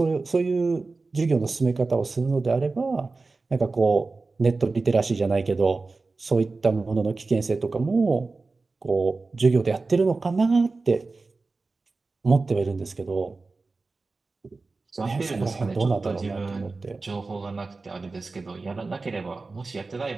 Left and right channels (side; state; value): left; quieter; 3.8 dB